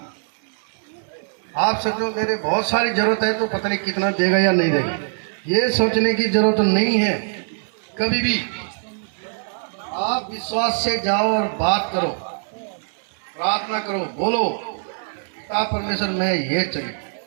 आप सोचो मेरे बहुत सारी जरूरत है तो पता नहीं कितना देगा या नहीं देगा, ये सोचने की जरूरत नहीं है कभी भी। आप विश्वास से जाओ और बात करो, प्रार्थना करो, बोलो पिता परमेश्वर मैं ये चाहिए।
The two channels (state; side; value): silent; left; digital silence